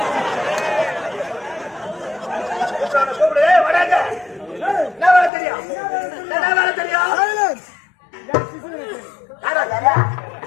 கூப்பிடு. வடாங்க. என்ன வேலை தெரியும்? என்ன வேலை தெரியும்? சைலன்ஸ். யாரோ யாரா?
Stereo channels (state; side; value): drops out; right; at 5.3 s